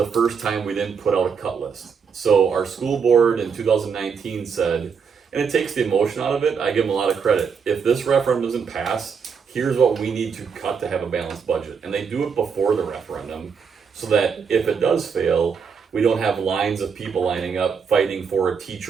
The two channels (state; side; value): quieter; left; 6.2 dB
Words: first time we didn't put out a cut list. So our school board in 2019 said, and it takes the emotion out of it. I give them a lot of credit. If this referendum doesn't pass, here's what we need to cut to have a balanced budget, and they do it before the referendum. So that if it does fail, we don't have lines of people lining up fighting for a